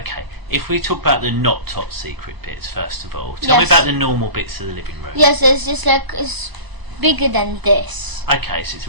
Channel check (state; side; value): late; left; 1.0 ms